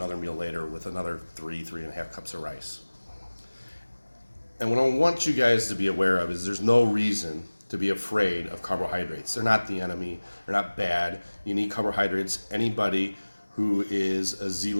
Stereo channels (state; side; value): inverted; both; correlation -1.00